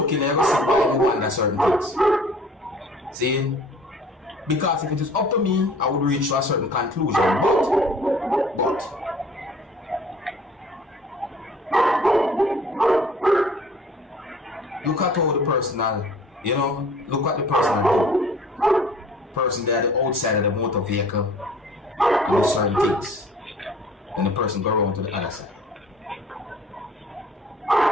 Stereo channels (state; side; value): normal; both; correlation 0.50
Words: and you'll see why you wonder certain things. See? Because if it is up to me, I would reach to a certain conclusion. But look at all the personal, you know, look at the personal person there, the outside of the motor vehicle, and do certain things. Then the person go around to the other side.